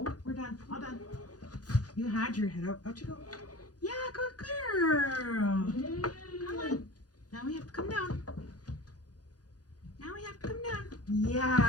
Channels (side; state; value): right; late; 0.68 ms